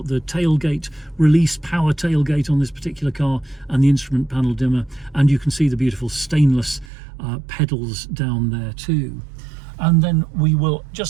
the tailgate release power tailgate on this particular car and the instrument panel dimmer, and you can see the beautiful stainless pedals down there too. And then we will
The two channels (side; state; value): left; drops out; at 6.9 s